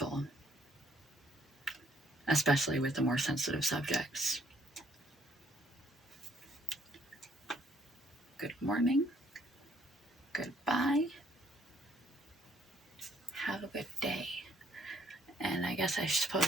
especially with the more sensitive subjects. Good morning. Goodbye. Have a good day. And I guess I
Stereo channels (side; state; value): both; normal; correlation 0.67